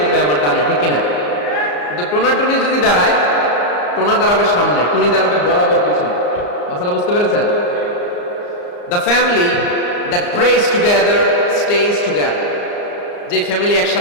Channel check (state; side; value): late; right; 34 ms